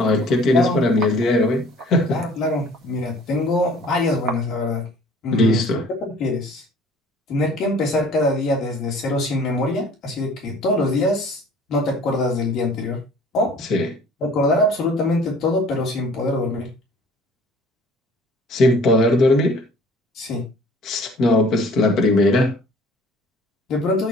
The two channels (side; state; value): both; normal; correlation 0.51